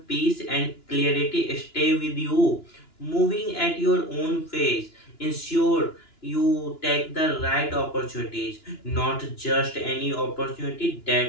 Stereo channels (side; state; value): right; late; 2.9 ms